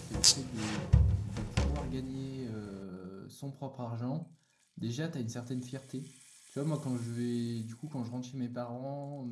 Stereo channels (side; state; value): both; identical; correlation 1.00